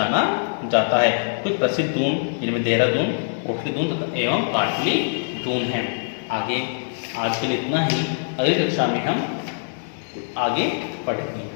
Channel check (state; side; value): silent; right; digital silence